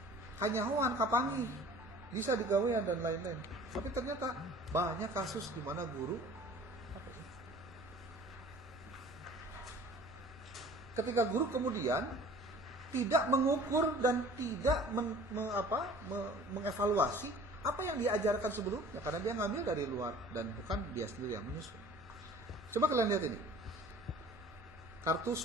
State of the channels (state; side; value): normal; both; correlation 0.47